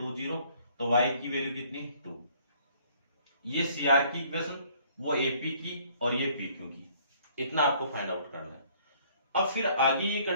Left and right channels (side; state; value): both; inverted; correlation -0.60